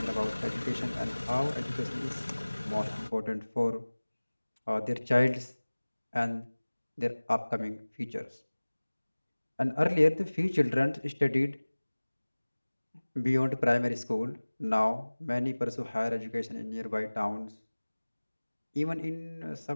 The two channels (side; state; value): both; inverted; correlation -1.00